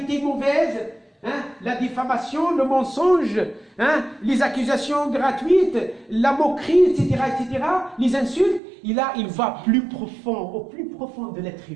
mauvaises, hein, la diffamation, le mensonge, hein, les accusations gratuites, la moquerie, etc., les insultes. Il va plus profond, au plus profond de l'être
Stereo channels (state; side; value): drops out; left; at 8.6 s